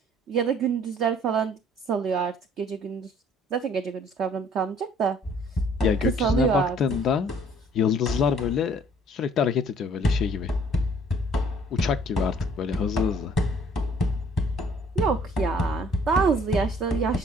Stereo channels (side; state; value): both; normal; correlation 0.58